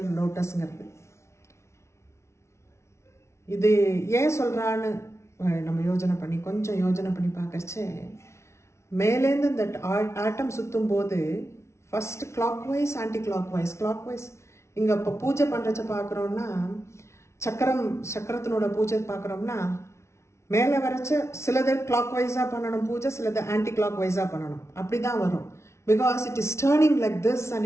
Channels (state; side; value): late; right; 0.13 ms